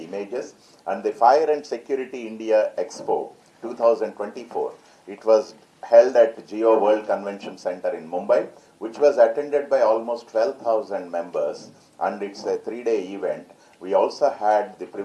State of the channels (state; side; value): identical; both; correlation 1.00